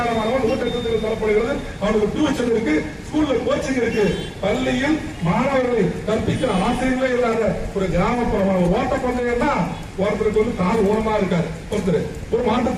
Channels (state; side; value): identical; both; correlation 1.00